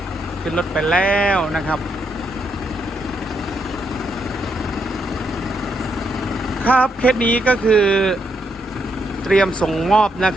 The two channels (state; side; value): normal; both; correlation 0.78